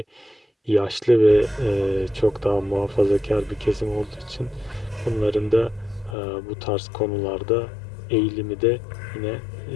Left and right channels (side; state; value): right; drops out; at 6.2 s